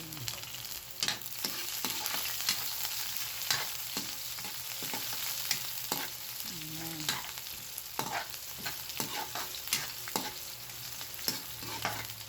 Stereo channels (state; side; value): identical; both; correlation 1.00